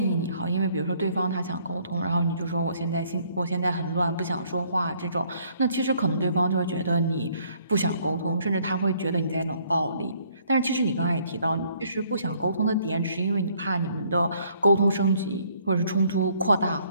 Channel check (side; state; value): both; inverted; correlation -0.64